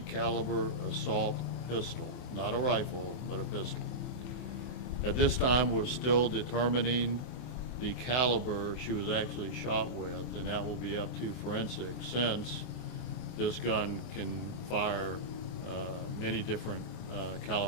Assault Pistol, not a rifle, but a pistol. At this time, we're still determining the caliber she was actually shot with, and that will be up to forensics, since this gun can fire many different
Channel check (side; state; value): right; late; 24 ms